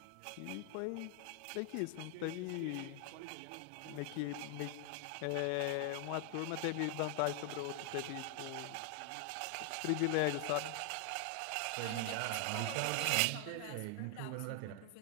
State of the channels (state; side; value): different; both; correlation 0.00